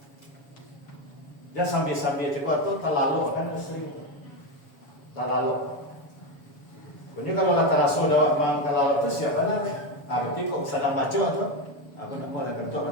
Jangan sambil cakap tu terlalu kan sering terlalu. Punya kalau kata Rasul dah memang terlalu tu siapa nak? Berarti kok sedang baca tu, aku nak mau ada bentuk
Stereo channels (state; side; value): late; right; 7.1 ms